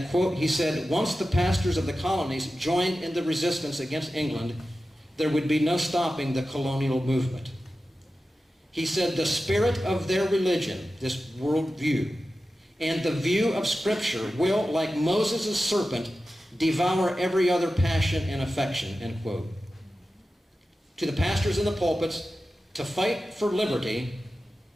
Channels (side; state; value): both; normal; correlation 0.93